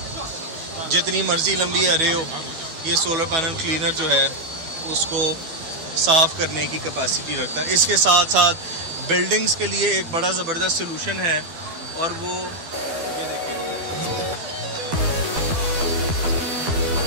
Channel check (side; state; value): left; late; 12 ms